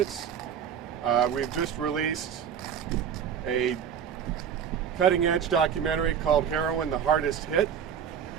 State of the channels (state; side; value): quieter; left; 8.1 dB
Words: We've just released a cutting-edge documentary called Heroin, the Hardest Hit,